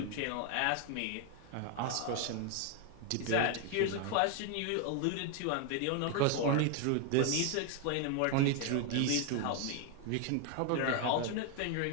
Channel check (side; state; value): both; different; correlation 0.01